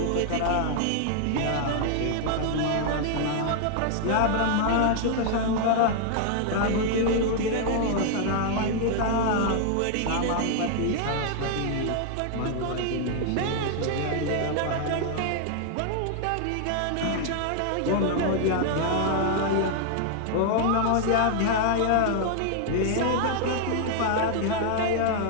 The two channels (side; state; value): both; different; correlation -0.01